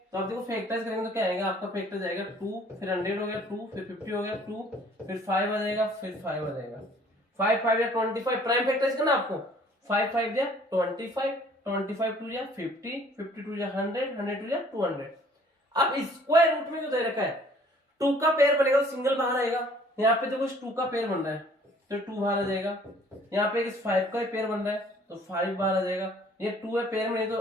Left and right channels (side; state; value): both; normal; correlation 0.56